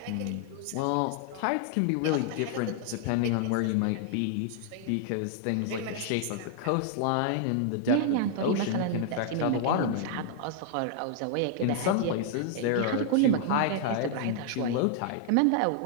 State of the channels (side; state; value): both; different; correlation -0.01